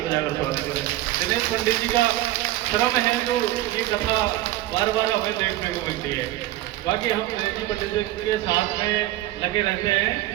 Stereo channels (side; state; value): left; quieter; 15.7 dB